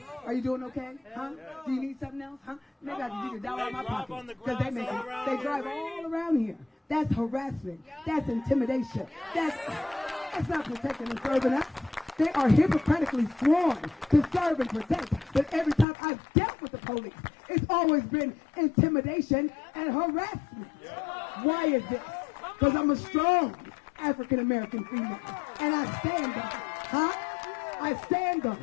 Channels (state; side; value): drops out; right; at 15.9 s